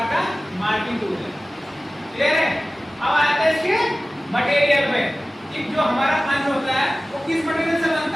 का मार्किंग टूल है, क्लियर है। अब आते हैं इसके मटेरियल पे कि जो हमारा पंच होता है वो किस मटेरियल से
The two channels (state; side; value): normal; both; correlation 0.97